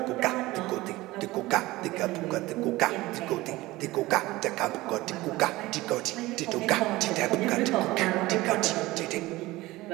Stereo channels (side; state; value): left; quieter; 19.2 dB